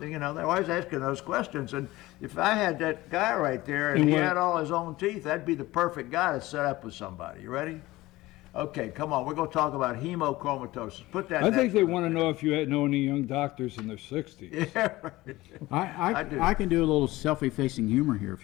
You know, they're always asking those questions. And if I had that guy right there and he had all his own teeth, that'd be the perfect guy to set up with somebody. You ready? Okay, come on. We're going to talk about hemochromatosis. Put that. I think they want to know if you know any young doctors in their 60s. Yeah, right. I do. I can do a little self-effacing humor here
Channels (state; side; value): quieter; right; 18.5 dB